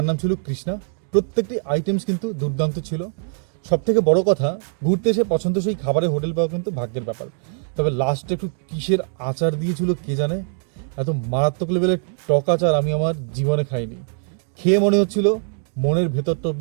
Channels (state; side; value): silent; left; 64 dB below the other